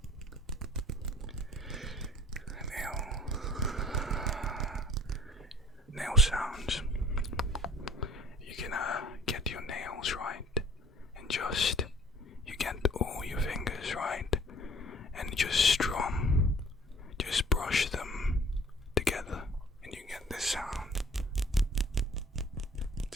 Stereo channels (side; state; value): both; normal; correlation 0.52